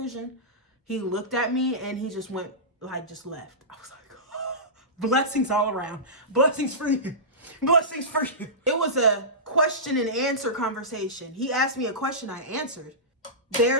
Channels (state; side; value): normal; both; correlation -0.18